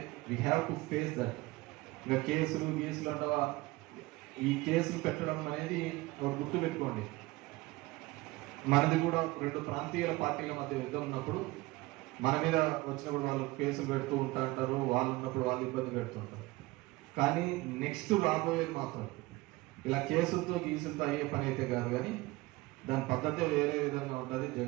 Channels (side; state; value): left; quieter; 20.9 dB